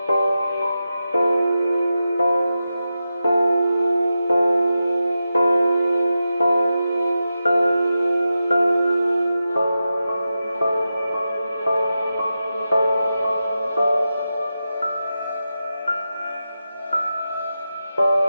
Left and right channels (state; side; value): inverted; both; correlation -0.90